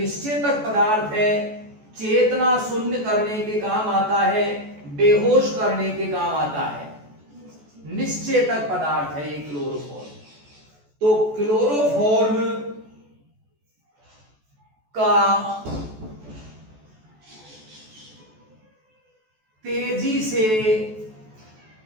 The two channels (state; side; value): late; left; 14 ms